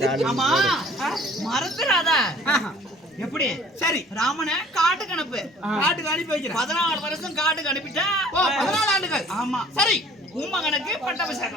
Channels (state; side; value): normal; both; correlation 0.52